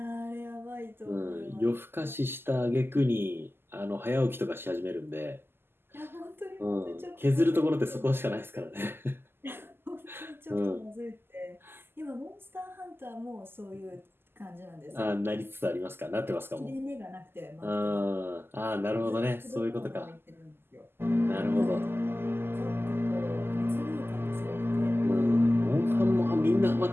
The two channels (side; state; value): left; late; 0.11 ms